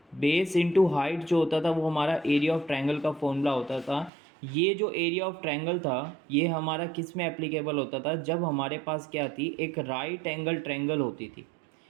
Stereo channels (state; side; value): drops out; left; at 4.1 s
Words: Base into height जो होता था वो हमारा एरिया ऑफ ट्रायंगल का फॉर्मूला होता था। ये जो एरिया ऑफ ट्रायंगल था ये हमारा किस में एप्लीकेबल होता था? जब हमारे पास क्या थी, एक राइट एंगल ट्रायंगल होती थी।